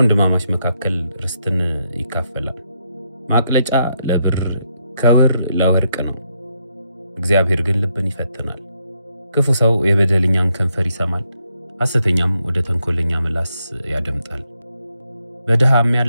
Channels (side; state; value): both; inverted; correlation -0.78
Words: መካከል ርስትን ይካፈላል። ማቅለጫ ለብር ከውር ለወርቅ ነው፣ እግዚአብሔር ግን ልብን ይፈትናል። ክፉ ሰው የበደለኛን ከንፈር ይሰማል፣ ሐሰተኛም ወደ ተንኮለኛ ምላስ ያደምጣል። በድሃ